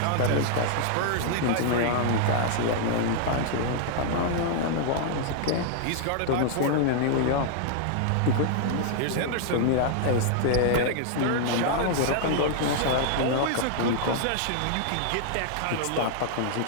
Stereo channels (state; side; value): different; both; correlation -0.01